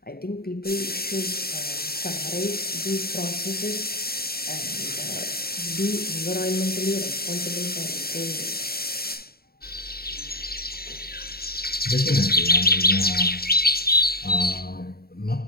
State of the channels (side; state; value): right; late; 0.45 ms